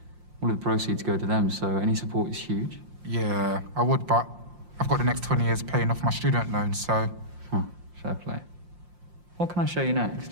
All of the proceeds go to them, so any support is huge. Yeah, I would, but I've got the next 20 years paying off my student loan, so... Huh, fair play. What can I show you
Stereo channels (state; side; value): late; left; 5.7 ms